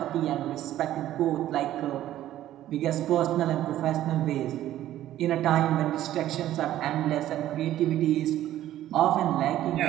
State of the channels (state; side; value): quieter; left; 13.1 dB